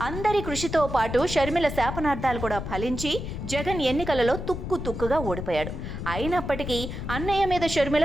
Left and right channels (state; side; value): noise; left; rumble, 6 dB below the sound